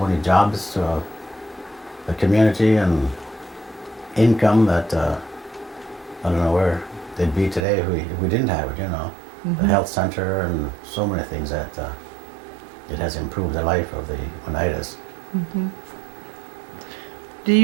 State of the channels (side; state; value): left; drops out; at 7.7 s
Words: many jobs to the community and income that I don't know where they'd be today if we didn't have it, you know. The health center and so many things that it has improved the life of the Oneidas. Do